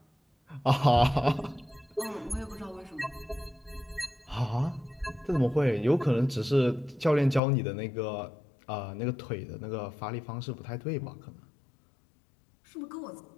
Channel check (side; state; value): right; drops out; at 7.4 s